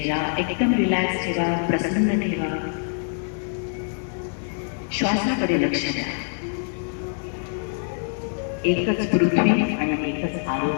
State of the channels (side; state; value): right; silent; 62 dB below the other